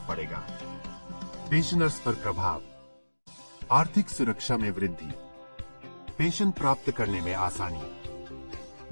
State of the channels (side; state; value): both; inverted; correlation -1.00